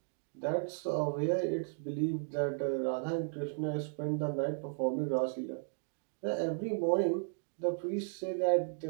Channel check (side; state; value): left; silent; digital silence